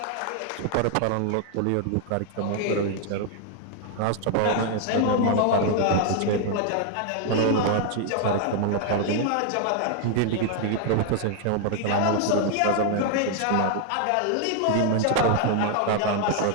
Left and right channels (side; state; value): both; different; correlation 0.00